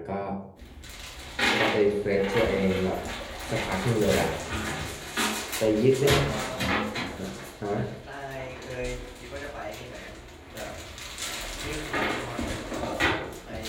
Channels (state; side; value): identical; both; correlation 1.00